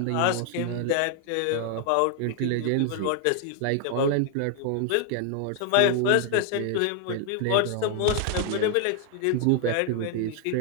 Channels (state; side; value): different; both; correlation 0.00